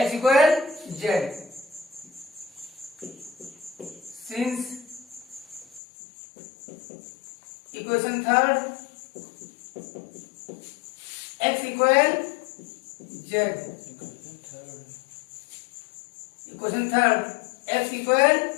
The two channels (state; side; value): drops out; right; at 5.8 s